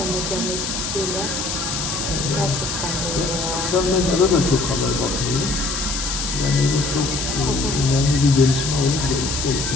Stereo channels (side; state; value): left; noise; hiss, 3 dB below the sound